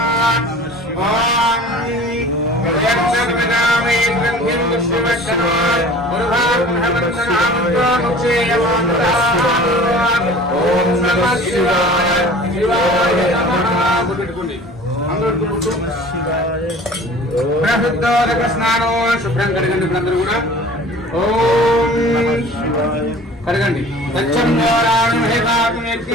స్నానం శుభ్రం కడగండి అందరూ కూడా. ఓం కడగండి.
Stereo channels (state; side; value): normal; both; correlation 0.44